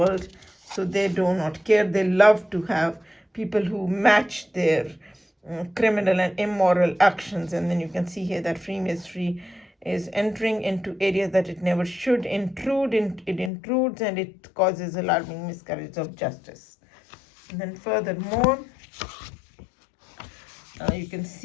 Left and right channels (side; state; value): right; drops out; at 13.5 s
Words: so they do not care. They love to have people who match their criminal and immoral actions. And then you can see here that Freemasonry is entering into areas that it never should intrude. It intrudes, and it causes alarming miscarriage of justice. And then furthermore, you can